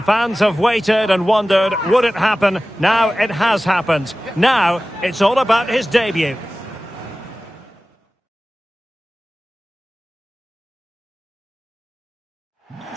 fans have waited and wondered, would it happen? Now it has happened. Now it's all about his debut.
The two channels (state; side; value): normal; both; correlation 0.96